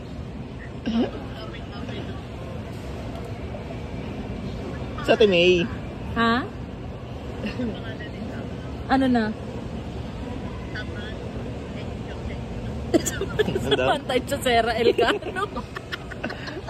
Sa Timay. Ha? Ano na? Pantay sa Sera Elcano.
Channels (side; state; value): both; identical; correlation 1.00